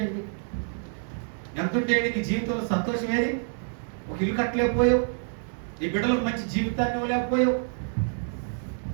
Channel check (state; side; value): silent; left; digital silence